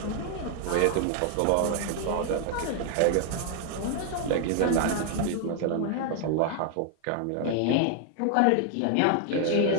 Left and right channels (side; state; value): both; different; correlation 0.00